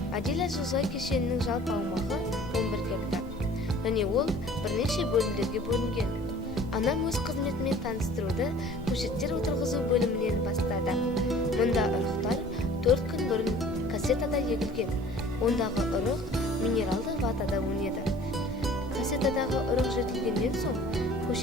Адиля жылыжай кешенінің жалпы аумағы 11 гектар, және ол бірнеше бөлімдерге бөлінген. Анам өз қызметімен таныстыруды көшеттер отырғызу бөлімінен бастады. Мұнда ұрықтар 4 күн бұрын кассетада егілген. Ондағы ұрық минералды ватада өнеді. Кассетадағы ұрық жетілгеннен соң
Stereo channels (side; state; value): left; noise; rumble, 16 dB below the sound